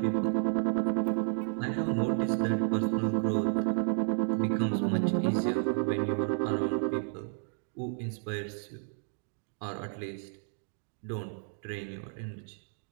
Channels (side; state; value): left; silent; 57 dB below the other